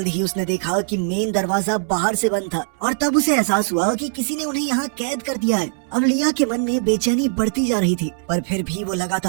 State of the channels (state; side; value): silent; left; 65 dB below the other